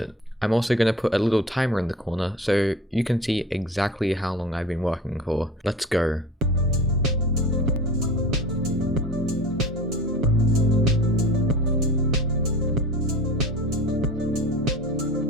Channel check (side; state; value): both; normal; correlation 0.37